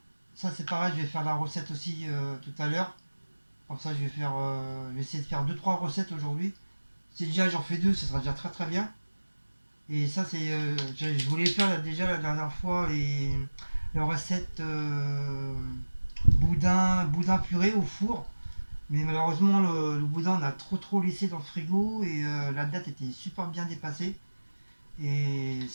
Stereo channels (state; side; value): inverted; both; correlation -1.00